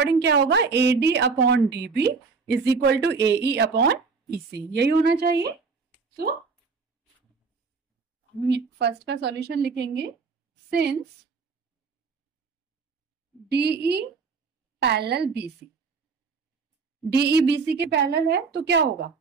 क्या होगा? AD upon DB is equal to AE upon EC, यही होना चाहिए। सो हम फर्स्ट का सॉल्यूशन लिखेंगे, since DE parallel BC, DE BC के पैरेलल है तो क्या होगा?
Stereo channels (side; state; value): left; quieter; 4.8 dB